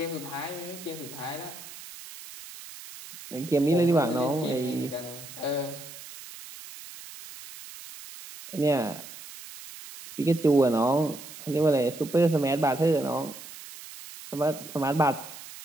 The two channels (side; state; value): right; noise; hiss, 15 dB below the sound